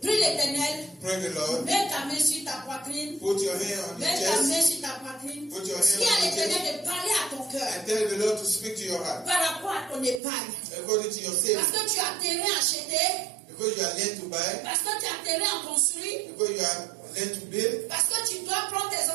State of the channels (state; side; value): drops out; left; at 10.2 s